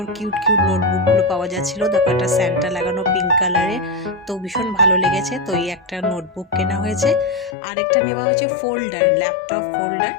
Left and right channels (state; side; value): drops out; right; at 7.6 s